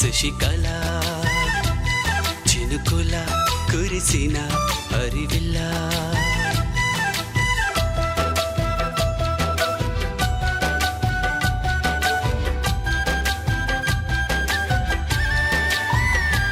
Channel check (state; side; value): identical; both; correlation 1.00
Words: చినుకుల కురిసిన హరివిల్ల